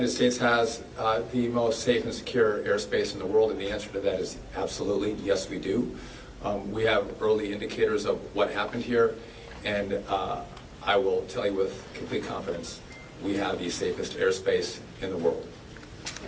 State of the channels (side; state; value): both; identical; correlation 1.00